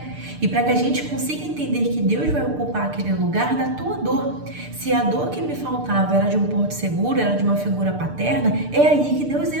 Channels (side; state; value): left; late; 6.7 ms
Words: e para que a gente consiga entender que Deus vai ocupar aquele lugar da tua dor. Se a dor que me faltava era de um porto seguro, era de uma figura paterna, é aí que Deus